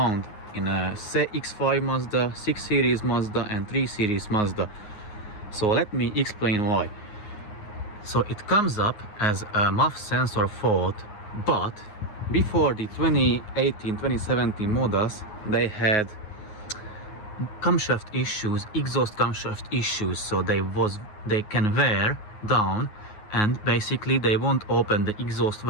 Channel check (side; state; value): right; late; 9.5 ms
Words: in a X5 Mazda, 6 Series Mazda and 3 Series Mazda. So let me explain why. So it comes up as a MAF sensor fault, but before the 2018-2017 models, they had camshaft issues, exhaust camshaft issues, so they can wear down and basically they won't open the exhaust